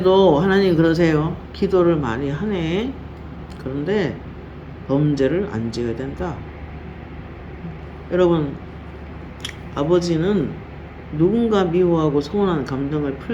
하나님 그러세요. 기도를 많이 하네. 그런데 범죄를 안 지어야 된다. 여러분, 아버지는 누군가 미워하고 서운한 감정을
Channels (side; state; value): both; identical; correlation 1.00